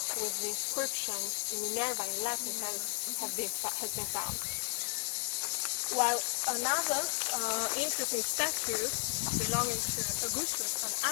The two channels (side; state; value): right; silent; 55 dB below the other